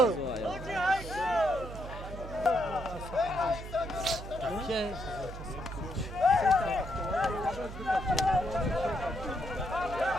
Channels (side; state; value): right; noise; hum, 10 dB below the sound